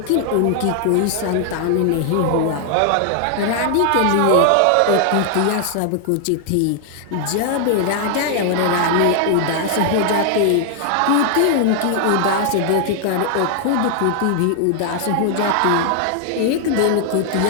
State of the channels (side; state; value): both; different; correlation 0.00